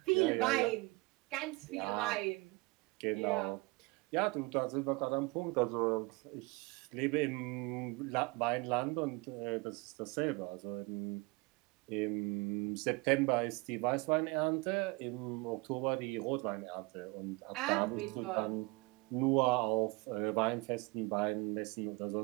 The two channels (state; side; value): quieter; left; 25.8 dB